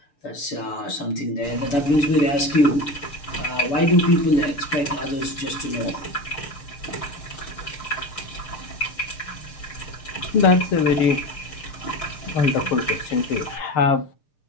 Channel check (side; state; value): right; late; 6.6 ms